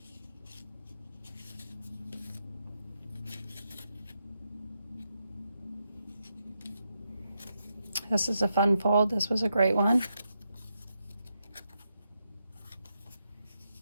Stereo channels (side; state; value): both; inverted; correlation -0.83